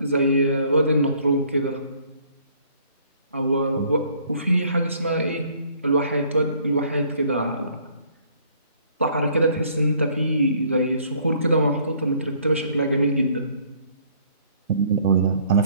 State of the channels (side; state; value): both; inverted; correlation -0.61